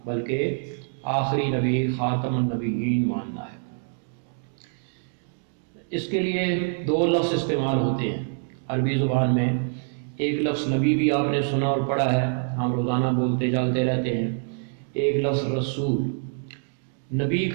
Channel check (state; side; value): silent; left; 61 dB below the other